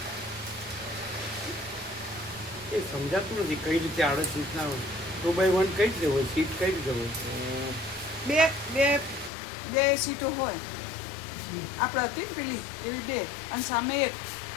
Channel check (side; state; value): right; drops out; at 9.3 s